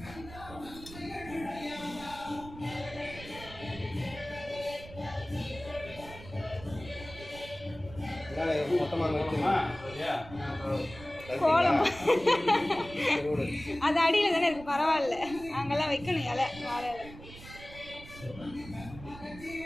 கோலம் அது அடியில் தானே இருக்கு, பரவாயில்ல, அங்கெல்லாம் வைக்கணும் இலை, வாழை இலை.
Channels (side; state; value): right; noise; rumble, 16 dB below the sound